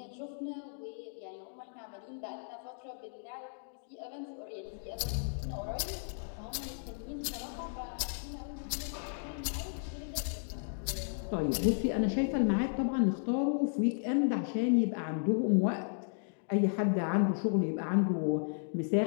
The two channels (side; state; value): right; silent; digital silence